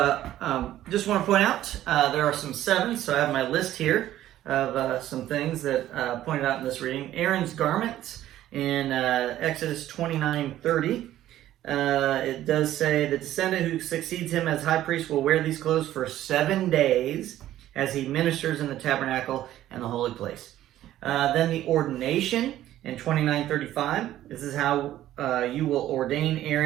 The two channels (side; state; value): left; quieter; 13.2 dB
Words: just want to point out there are some sevens, so I have my list here of some things that pointed out in this reading. Aaron's garments in Exodus 29:30. It does say the descendant who succeeds him as high priest will wear these clothes for 7 days as he ministers in the tabernacle and the holy place. Then the ordination in 29:35. This is how you will ordain